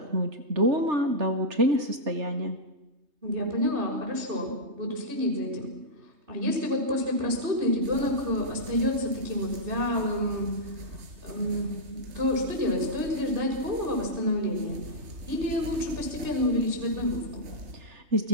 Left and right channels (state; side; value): late; left; 3.2 ms